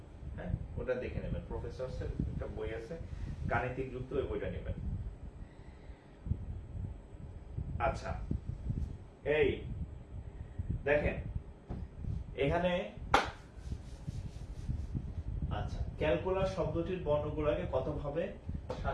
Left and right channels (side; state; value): both; identical; correlation 1.00